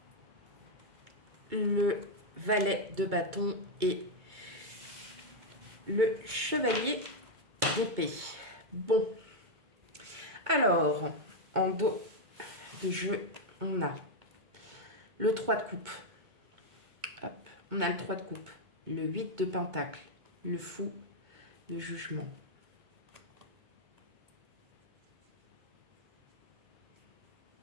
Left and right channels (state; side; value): late; left; 2.2 ms